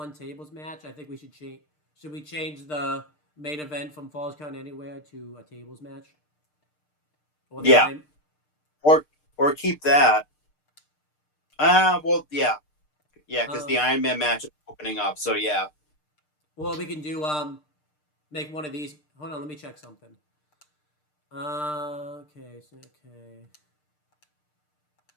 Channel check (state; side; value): late; right; 6.6 ms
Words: tables match. I think we should change. Should we change the main event from Falls Count Anywhere to a tables match? Yeah. Or keep that. Well, yeah, because the Iron Man match is opening up. So yeah. Well, we can do make one of these. Hold on, let me check something. Okay.